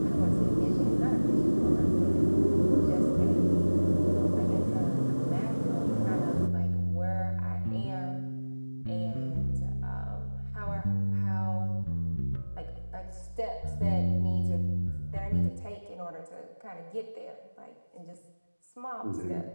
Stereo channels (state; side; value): inverted; both; correlation -1.00